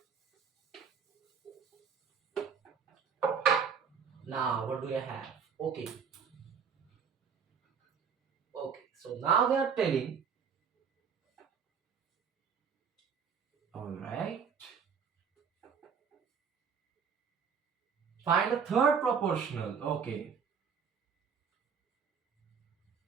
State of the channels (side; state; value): left; quieter; 6.6 dB